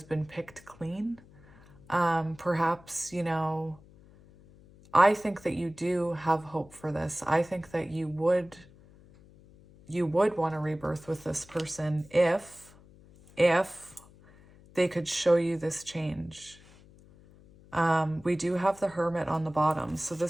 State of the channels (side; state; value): left; noise; hum, 24 dB below the sound